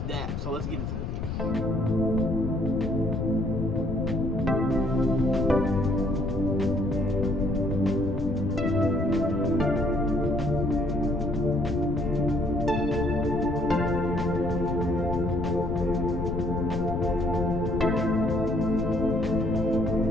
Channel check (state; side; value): noise; left; rumble, 3 dB below the sound